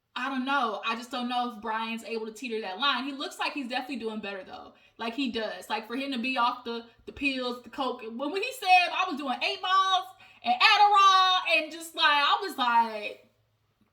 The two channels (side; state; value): both; identical; correlation 1.00